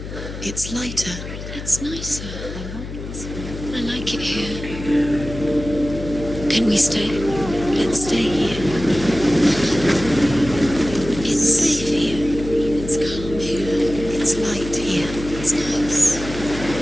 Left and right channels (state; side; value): noise; left; hum, 9 dB below the sound